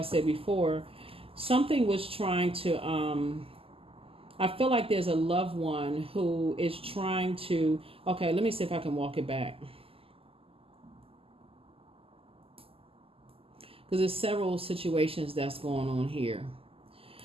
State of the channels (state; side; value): late; left; 0.27 ms